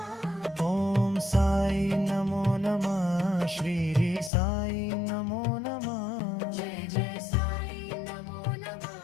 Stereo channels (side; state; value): right; drops out; at 4.3 s